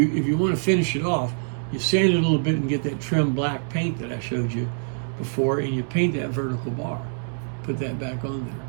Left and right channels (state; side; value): silent; left; digital silence